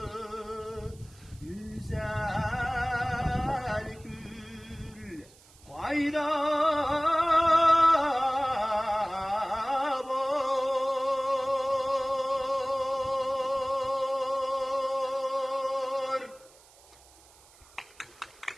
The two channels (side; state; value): right; noise; hiss, 26 dB below the sound